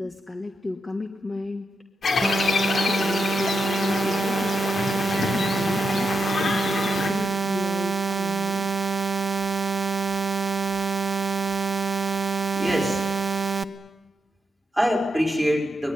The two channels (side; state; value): both; normal; correlation 0.85